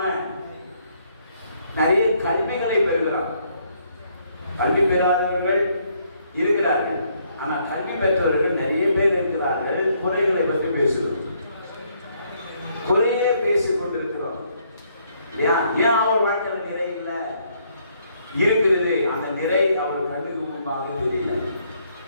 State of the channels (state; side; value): inverted; both; correlation -0.70